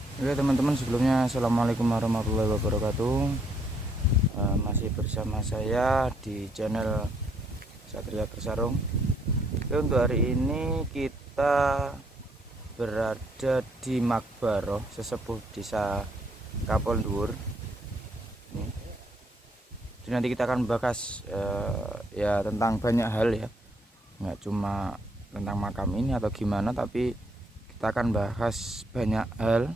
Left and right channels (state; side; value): normal; both; correlation 0.71